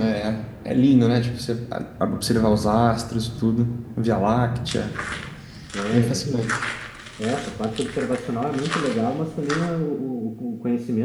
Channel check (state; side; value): identical; both; correlation 1.00